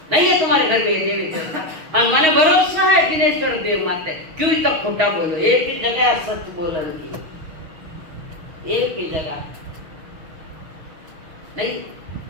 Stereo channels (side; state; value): left; late; 6.3 ms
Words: नहीं है तुम्हारे घर में ये देवी देवता। और माने भरोसा है जिनेश्वर देव माते, क्यों तक खोटा बोलो, एक ही जगह सच बोलन की, एक ही जगह नहीं।